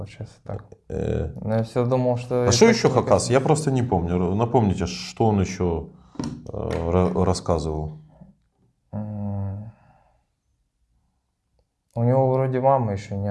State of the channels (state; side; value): identical; both; correlation 1.00